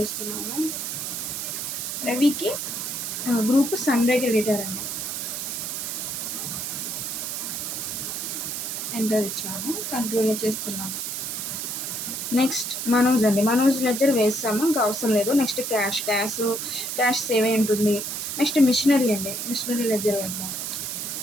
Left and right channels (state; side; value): noise; right; hiss, 4 dB below the sound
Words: రవికి గ్రూప్ సన్రే క్రెడిటర్ అండి, ఎంటర్ ఇచ్చాను, కంట్రోల్లో చేస్తున్నాను. నెక్స్ట్ మనోజ్ అండి, మనోజ్ లెడ్జర్ వేస్తాము, ఇంకా అవసరం లేదు. నెక్స్ట్ క్యాష్ సేవ్ అయి ఉంటుంది. నెక్స్ట్ మిషనరీ అండి, మిషనరీ లెడ్జర్ వేద్దాం.